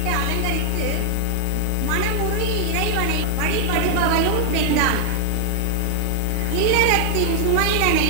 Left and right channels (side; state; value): both; different; correlation 0.01